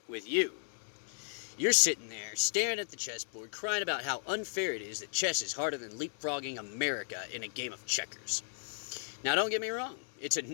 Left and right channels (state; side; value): silent; right; 54 dB below the other